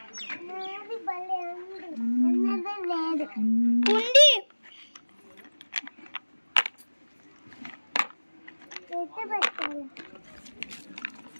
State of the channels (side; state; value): both; inverted; correlation -1.00